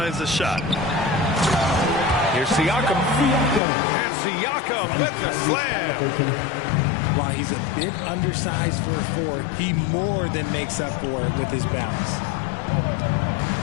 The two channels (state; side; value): drops out; right; at 3.6 s